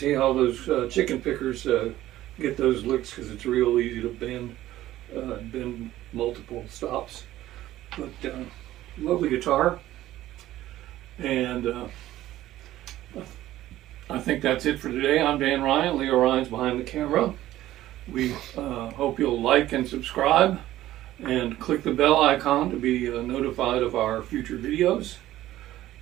how those chicken pickers get those licks, because it's real easy to bend multiple stops. But lovely guitar, and I think that's it for today. I'm Dan Ryan. Leo Ryan's behind the camera. We hope you'll like and subscribe and click the bell icon to be notified of our future videos.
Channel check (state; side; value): quieter; left; 14.5 dB